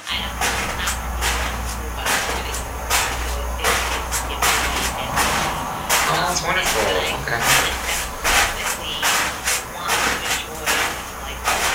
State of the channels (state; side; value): identical; both; correlation 1.00